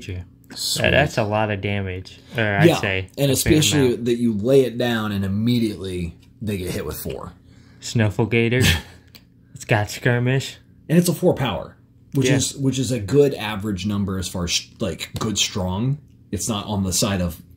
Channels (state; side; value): identical; both; correlation 1.00